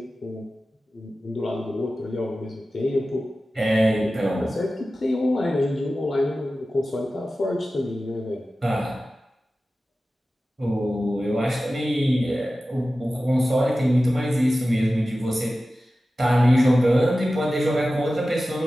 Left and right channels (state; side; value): normal; both; correlation 0.95